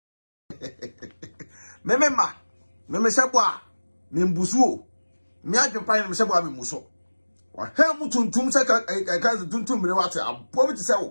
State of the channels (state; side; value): inverted; both; correlation -1.00